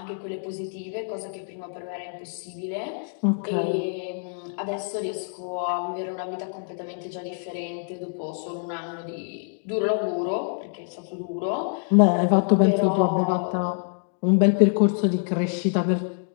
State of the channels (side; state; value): right; silent; 61 dB below the other